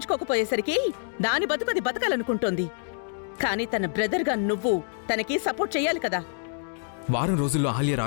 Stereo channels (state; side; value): silent; right; digital silence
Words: దాని బతుకది బతకాలనుకుంటోంది. కాని తన బ్రదర్గా నువ్వు తనకి సపోర్ట్ చెయ్యాలి కదా. వారం రోజుల్లో అహల్య